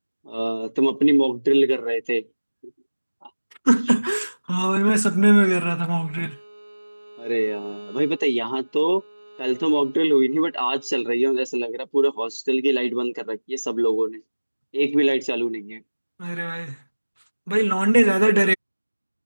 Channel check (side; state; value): both; inverted; correlation -1.00